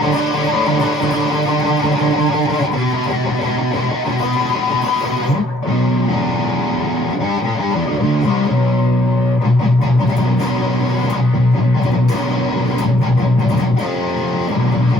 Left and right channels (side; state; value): both; normal; correlation 0.63